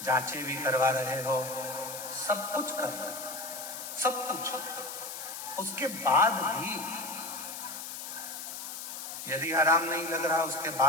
जांचें भी करवा रहे हो, सब कुछ कर रहे हो, सब कुछ। उसके बाद भी यदि आराम नहीं लग रहा, उसके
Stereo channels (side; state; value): left; noise; hiss, 8 dB below the sound